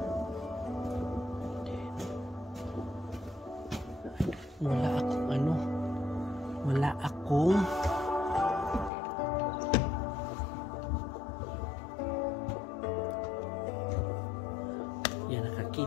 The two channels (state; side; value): drops out; right; at 8.9 s